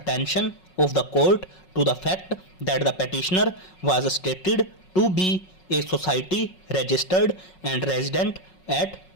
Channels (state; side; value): late; right; 5.4 ms